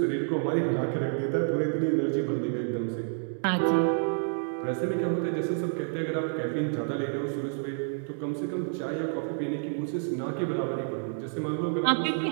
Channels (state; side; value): silent; left; digital silence